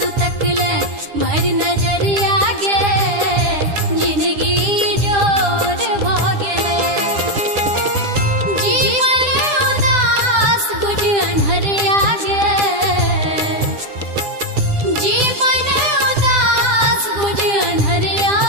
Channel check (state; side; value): late; left; 10 ms